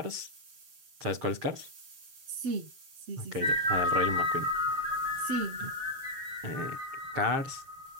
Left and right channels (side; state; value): left; late; 7.4 ms